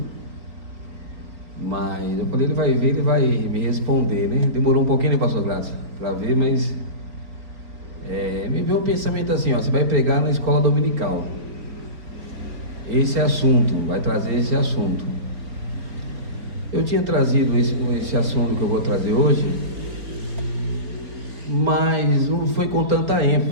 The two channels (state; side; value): late; left; 4.5 ms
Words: mas eu falei, ele vai ver, ele vai me responder, né? Demorou um pouquinho, né, pastor Gladson, para ver, mas me veio um pensamento assim, ó, você vai pregar na escola dominical. Esse assunto, vai trazer esse assunto. Eu tinha trazido esse assunto que eu vou trazer hoje, mas não foi com tanta